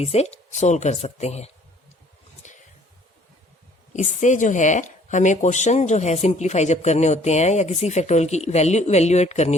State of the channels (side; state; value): both; normal; correlation 0.58